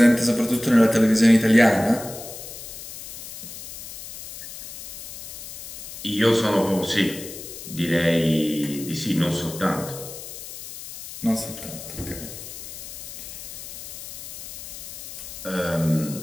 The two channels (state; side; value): noise; left; hiss, 12 dB below the sound